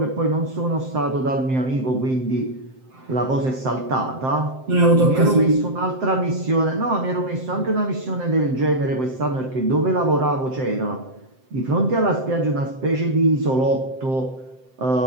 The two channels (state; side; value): late; left; 7.7 ms